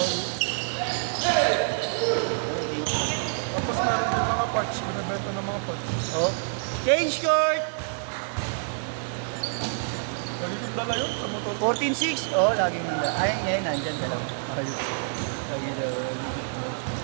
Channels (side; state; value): left; silent; digital silence